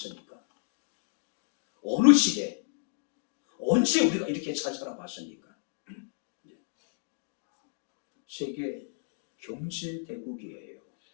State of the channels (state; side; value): silent; right; digital silence